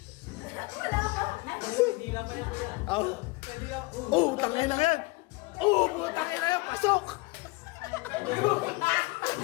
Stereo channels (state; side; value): quieter; right; 24.9 dB